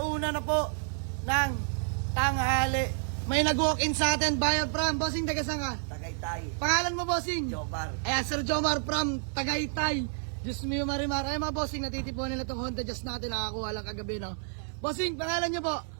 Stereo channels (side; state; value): left; silent; 58 dB below the other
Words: na po ng tanghali. May nag-walk-in sa atin, Bayan from bossing, taga saan ka? Tagaytay. Pangalan mo bossing? Jomar. Ayan, Sir Jomar from Tagaytay. Diyos mio marimar. Ayan mga bossing, natitipuan nila itong Honda Jazz natin, nakakuha lang kagabi, no. Bossing, pangalan niyo po?